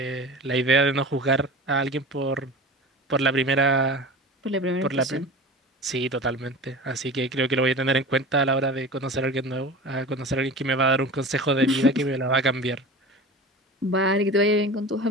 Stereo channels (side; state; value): both; normal; correlation 0.35